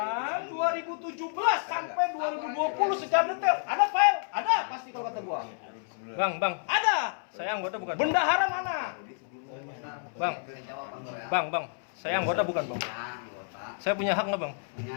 2017 sampai 2020 secara detail. Ada file? Ada pasti kalau kata gua. Bang, Ada. saya anggota bukan? Bendahara mana? Bang, Jawaban lo ya. bang, saya anggota bukan, Bang? Ya, anggota. Saya punya hak nggak, Bang?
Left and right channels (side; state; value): right; silent; 58 dB below the other